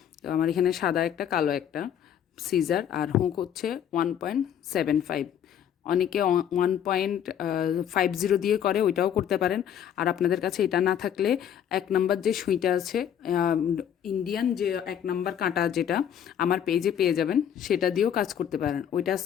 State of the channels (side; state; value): right; quieter; 9.4 dB